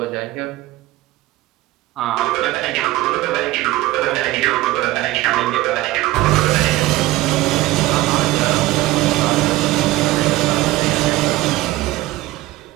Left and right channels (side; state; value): left; quieter; 17.7 dB